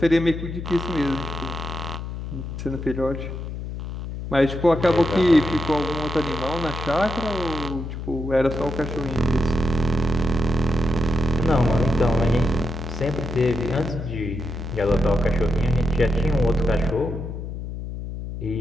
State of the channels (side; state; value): left; noise; hum, 7 dB below the sound